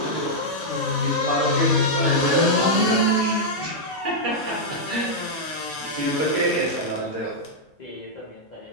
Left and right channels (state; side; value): normal; both; correlation -0.05